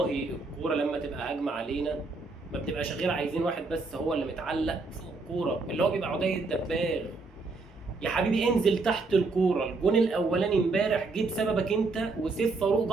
الكوره لما تبقى هجمه علينا ما بتبقاش غير عايزين واحد بس هو اللي متعلق فوق الكوره، اللي هو بيبقى عدي الدباغ. يا حبيبي انزل تحت الكوره. الجون الاولاني امبارح جه بسببك انت وسيف فاروق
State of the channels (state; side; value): quieter; left; 3.8 dB